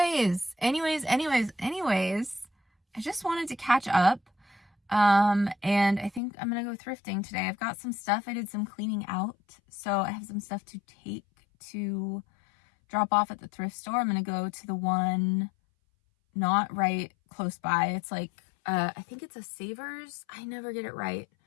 I just wanted to catch up. And I think I'm gonna go thrifting today. I've got some stuff. I did some cleaning out, so I have some stuff to take to drop off at the thrift store. I'm gonna go to the one not right close by. It's like, I think it's a Savers. I never get it right.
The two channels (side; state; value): right; drops out; at 6.2 s